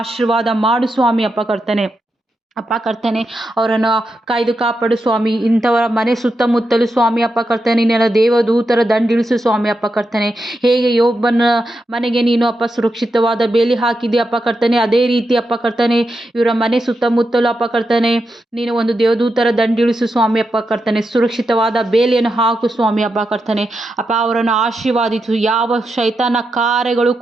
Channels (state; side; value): normal; both; correlation 0.86